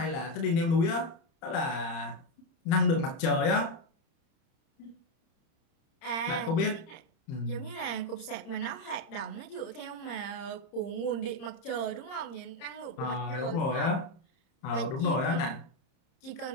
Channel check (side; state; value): right; late; 30 ms